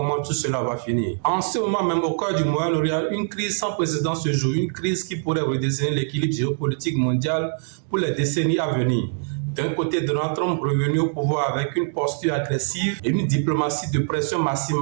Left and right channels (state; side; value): silent; left; digital silence